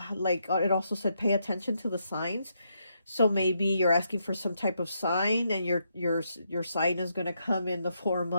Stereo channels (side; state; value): both; inverted; correlation -0.79